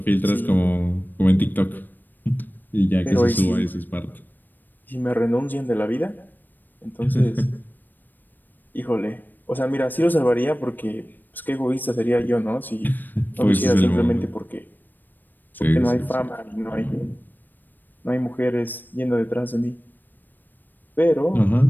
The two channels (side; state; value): right; late; 0.090 ms